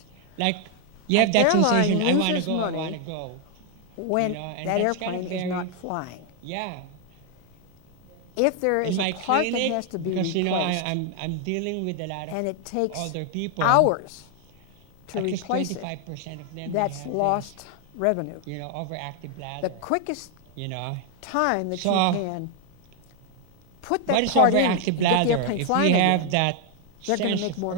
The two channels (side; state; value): both; different; correlation 0.00